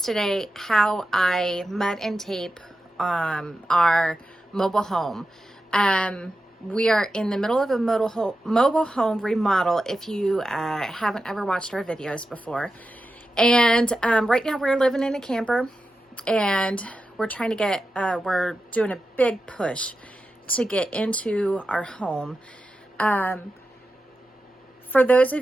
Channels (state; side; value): normal; both; correlation 0.91